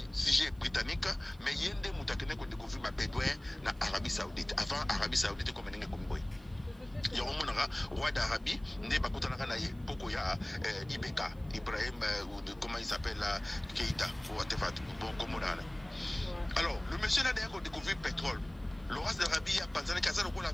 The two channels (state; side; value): noise; right; hiss, 30 dB below the sound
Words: britannique, mais yende mutakene ko découvrir ma bédouin na Arabie Saoudite. Avant Arabie Saoudite comme n'engue comme boy. Il y a un monara roi d'Arabie, ne bakutana na ye poko ya Ibeka, Ibrahim ou de comment il s'appelle Keïta ou whatever bon comme on a. Alors le monsieur là d'ailleurs ko découvrir pétrole. Laurence d'Arabie a pensé que ça le ko la